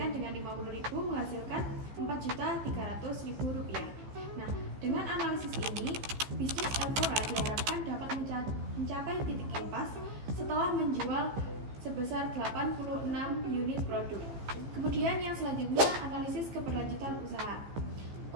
dengan 50.000 menghasilkan 4.300.000 rupiah. Nah, dengan analisis ini, bisnis Elfora diharapkan dapat mencapai titik impas setelah menjual sebesar 86 unit produk. Kemudian yang selanjutnya analisis keberlanjutan usaha.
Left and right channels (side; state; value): left; late; 15 ms